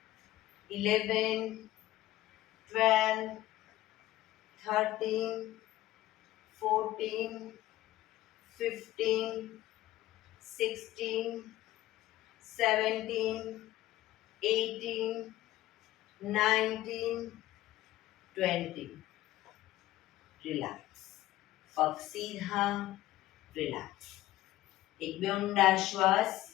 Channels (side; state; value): right; quieter; 15.6 dB